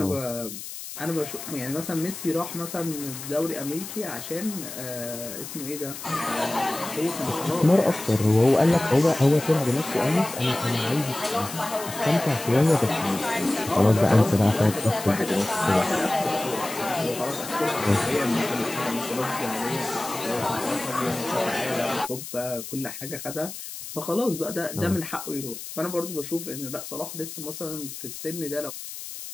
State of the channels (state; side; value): noise; left; hiss, 10 dB below the sound